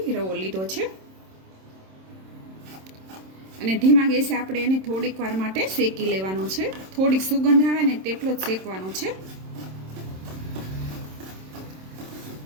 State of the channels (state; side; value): late; left; 27 ms